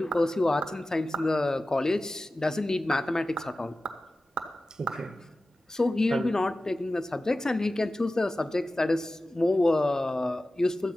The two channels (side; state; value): both; normal; correlation 0.95